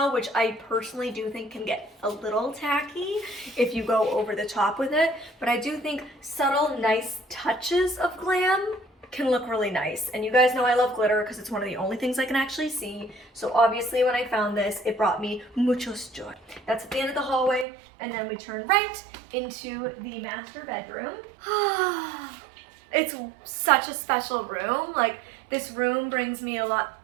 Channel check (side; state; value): left; drops out; at 17.7 s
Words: which I personally do think can get a little tacky if you go over the top with it. But I do think subtle, nice touches of glam can look really nice. And you guys know I love glitter because it's one of the only things I can actually see. So obviously when I found this, it brought me muchos joy. That's at the end of the hallway, and then we turn right into the master bedroom. It's such a special room. Like, this room brings me a lot.